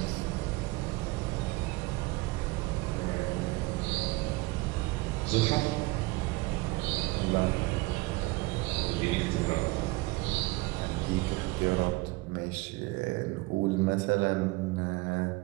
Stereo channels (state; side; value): quieter; left; 22.9 dB